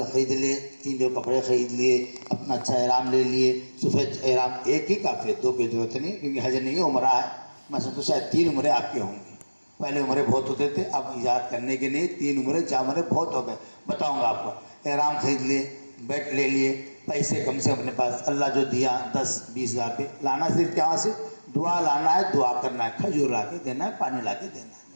خرید لیے، 3 جو کپڑے خرید لیے، اپنا اچھا احرام لے لیے. سفید احرام 1 ہی کافی ہے، 2 کی ضرورت نہیں، کیونکہ حج نہیں ہے عمرہ ہے. میں سمجھتا شاید 3 عمرے آپ کے ہوں گے. پہلے عمرے بہت ہوتے تھے، اب ایجاد کرنے کے لیے 3 عمرے 4 عمرے بہت ہو گئے. بتاؤں گا آپ کو. احرام خرید لیے، بیٹ لے لیے، پیسے کم سے اپنے پاس اللہ جو دیا 10-20 ہزار پہ لانا. صرف کہاں سے؟ دعا لانا ہے، دعا کرنا ہے، کھجور لا کے دینا ہے، پانی لا کے دینا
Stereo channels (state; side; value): inverted; both; correlation -1.00